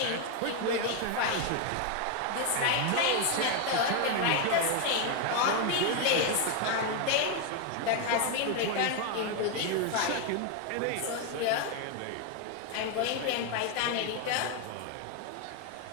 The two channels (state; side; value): different; both; correlation 0.01